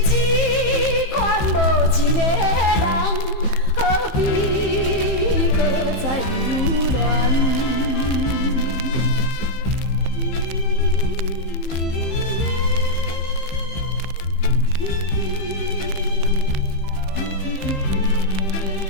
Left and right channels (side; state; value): right; late; 15 ms